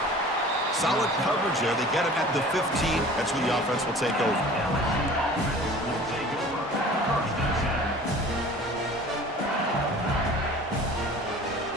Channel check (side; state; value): both; normal; correlation 0.44